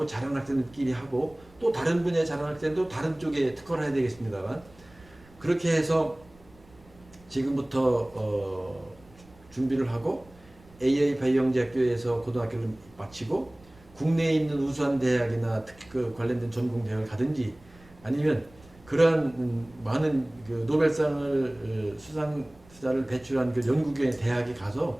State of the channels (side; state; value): right; noise; rumble, 26 dB below the sound